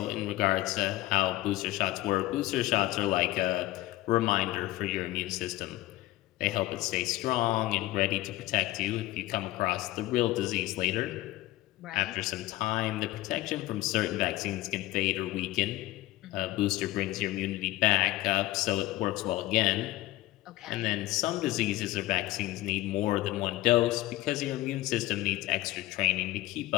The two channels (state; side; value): quieter; right; 17.2 dB